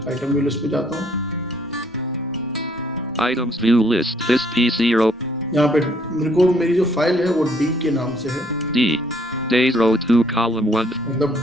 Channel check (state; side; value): normal; both; correlation 0.65